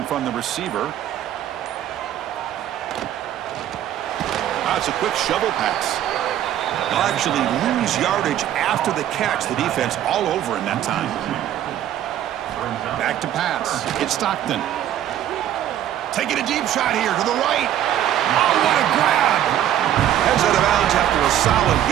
from the receiver. It's a quick shovel pass. They'll actually lose yardage after the catch. The defense all over in that time. Back to pass. It's Stockton. Taking a deep shot here to the right. Oh, what a grab! Heads out of bounds after a solid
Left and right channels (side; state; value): left; quieter; 11.4 dB